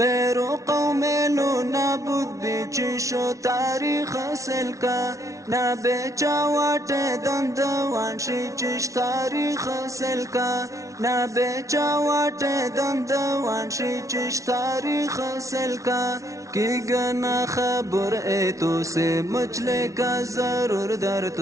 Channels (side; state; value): left; late; 0.15 ms